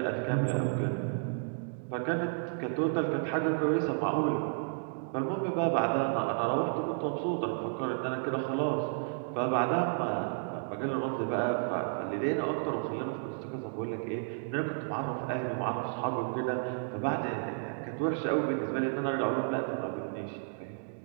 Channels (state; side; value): silent; left; digital silence